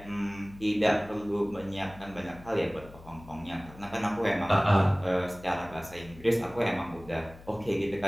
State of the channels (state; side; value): noise; left; hum, 19 dB below the sound